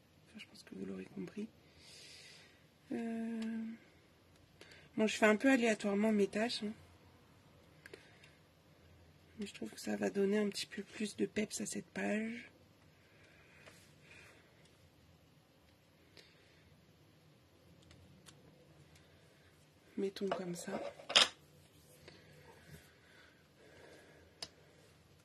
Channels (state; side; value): identical; both; correlation 1.00